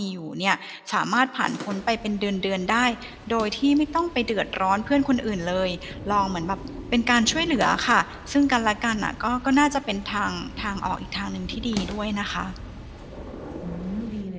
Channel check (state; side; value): identical; both; correlation 1.00